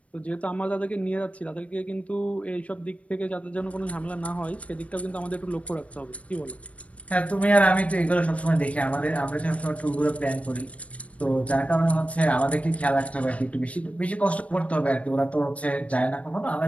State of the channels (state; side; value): late; right; 0.065 ms